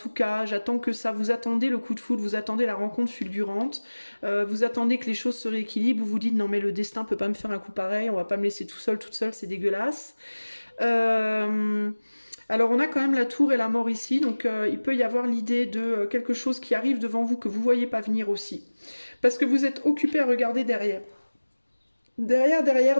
cas, j'attends que ça, vous attendez le coup de foudre, vous attendez la rencontre fulgurante, vous attendez que les choses se rééquilibrent, vous vous dites non mais le destin peut pas me faire un coup pareil, on va pas me laisser tout seul, toute seule, c'est dégueulasse. Alors on a quand même la tour et la mort ici, donc il peut y avoir l'idée de quelque chose qui arrive devant vous que vous voyez pas venir aussi. Parce que vous êtes occupé à regarder derrière.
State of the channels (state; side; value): inverted; both; correlation -1.00